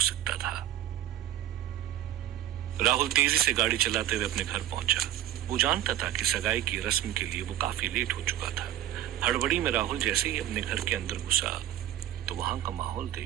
सकता था। राहुल तेजी से गाड़ी चलाते हुए अपने घर पहुंचा। वो जानता था कि सगाई की रस्म के लिए वो काफी लेट हो चुका था। हड़बड़ी में राहुल जैसे ही अपने घर के अंदर घुसा तो वहां का माहौल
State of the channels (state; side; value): quieter; left; 12.4 dB